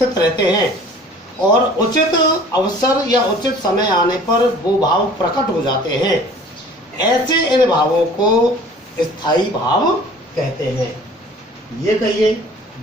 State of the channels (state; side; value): normal; both; correlation 0.48